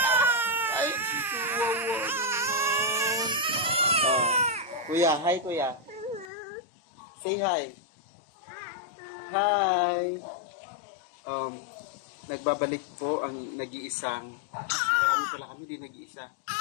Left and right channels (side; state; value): right; drops out; at 6.3 s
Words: Ay, kuya, hi kuya. Say hi. Hi. Nagbabalik po ang nag-iisang marami pala kami din nag-iisa.